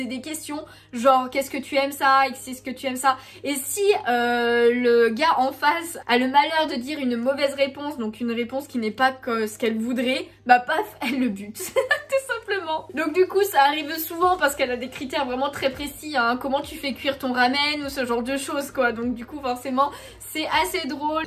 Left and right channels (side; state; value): both; identical; correlation 1.00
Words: des questions, genre qu'est-ce que tu aimes ça, est-ce que tu aimes ça, et si le gars en face a le malheur de dire une mauvaise réponse, donc une réponse qui n'est pas ce qu'elle voudrait, paf, elle le bute, tout simplement. Donc du coup ça arrive souvent parce qu'elle a des critères vraiment très précis, hein, comment tu fais cuire ton ramen ou ce genre de choses quoi, donc du coup forcément c'est assez drôle.